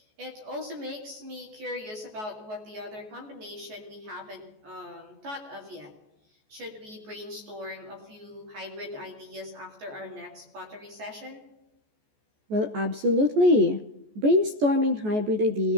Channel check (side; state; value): left; late; 14 ms